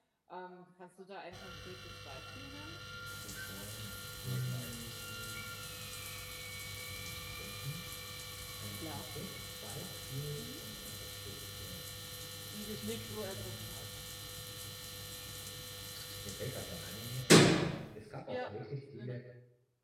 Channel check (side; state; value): both; identical; correlation 1.00